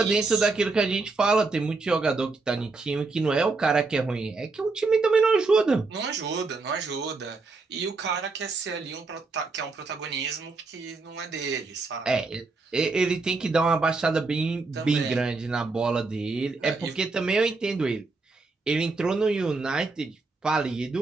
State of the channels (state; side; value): quieter; left; 3.8 dB